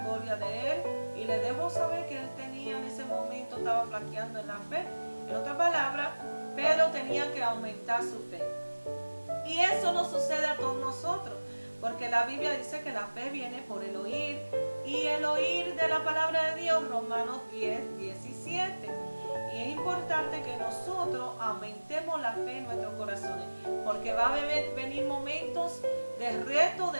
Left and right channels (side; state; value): both; inverted; correlation -1.00